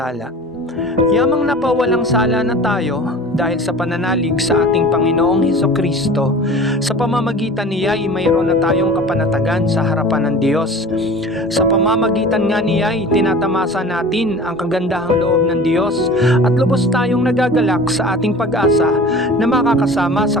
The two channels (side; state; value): both; normal; correlation 0.40